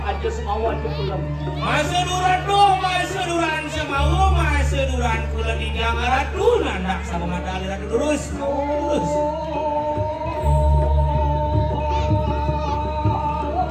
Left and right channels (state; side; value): identical; both; correlation 1.00